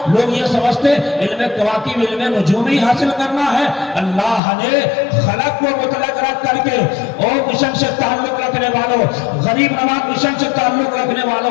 لوگ یہ سمجھتے علم کواکب علم نجوم ہی حاصل کرنا ہے۔ اللہ نے خلق کو مطلق رکھ کر کے، او مشن سے تعلق رکھنے والوں، غریب نواز مشن سے تعلق رکھنے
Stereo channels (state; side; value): drops out; right; at 4.4 s